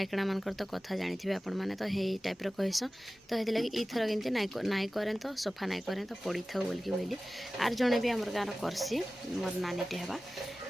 मानकर तो कथा जानी आपण मैंने तो हे टाइप कहस तो ये लगे ईथर केमती नाई करें तो सफा नाई करें तो पड़ी था बोलिकी बोली आर जड़े भी आमर गाँव करसी मोर नानीटे हेबा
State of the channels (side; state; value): both; normal; correlation 0.96